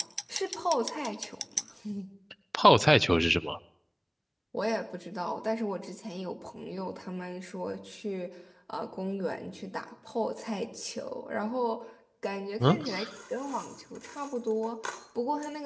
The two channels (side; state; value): both; identical; correlation 1.00